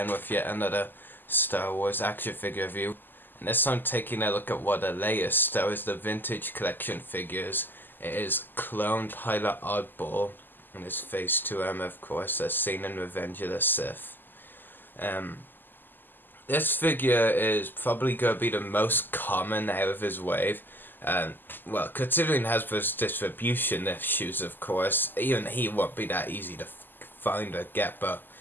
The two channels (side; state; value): right; late; 0.091 ms